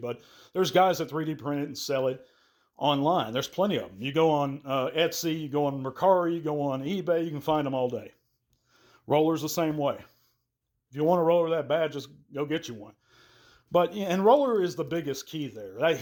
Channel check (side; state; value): both; identical; correlation 1.00